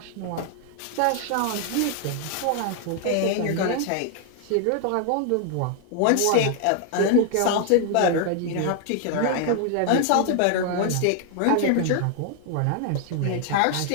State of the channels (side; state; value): both; different; correlation 0.00